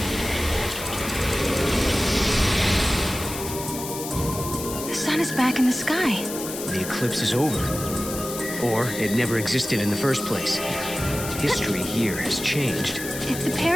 Back in the sky. The eclipse is over. Or it never existed in the first place. History here has changed. If the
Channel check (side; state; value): left; noise; hiss, 8 dB below the sound